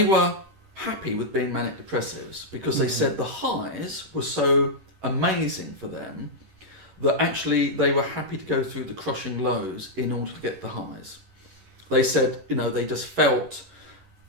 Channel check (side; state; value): left; late; 10 ms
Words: were happy with being manic depressives because they said the highs were so amazing for them that actually they were happy to go through the crushing lows in order to get the highs. They said, they just felt,